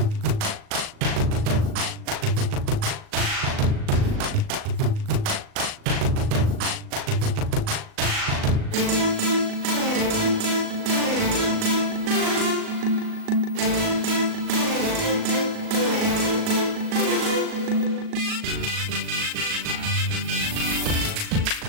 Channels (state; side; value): late; left; 38 ms